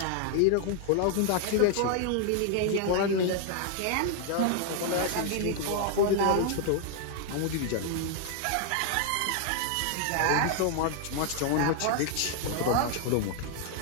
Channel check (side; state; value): both; different; correlation 0.00